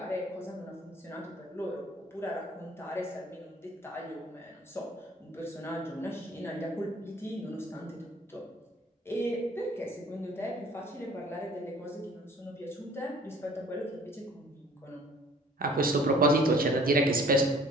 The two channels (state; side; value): normal; both; correlation 0.53